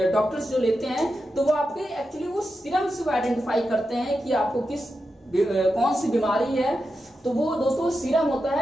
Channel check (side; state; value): both; normal; correlation 0.89